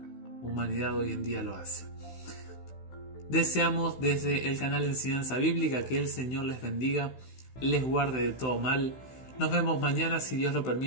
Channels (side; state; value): right; late; 16 ms